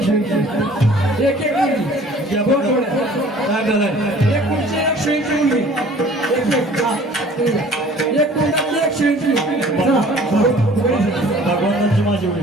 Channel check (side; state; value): both; normal; correlation 0.50